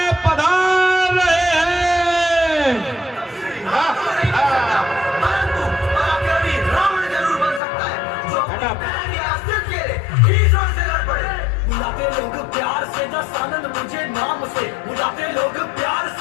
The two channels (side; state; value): right; drops out; at 7.6 s